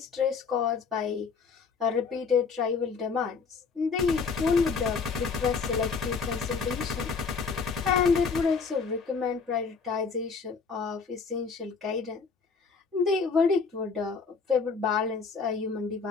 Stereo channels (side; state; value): right; quieter; 5.2 dB